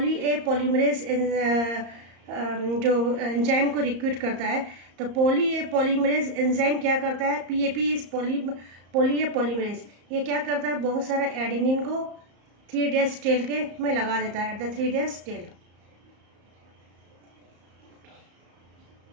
पॉलीमरेज जो एंजाइम को रिक्रूट करता है. तो पॉली ए पॉलीमरेज एंजाइम क्या करता है, PAP is poly A polymerase, ये क्या करता है, बहुत सारा एडिनिन को 3 days टेल के में लगा देता है एट द 3 days टेल.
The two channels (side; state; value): left; late; 34 ms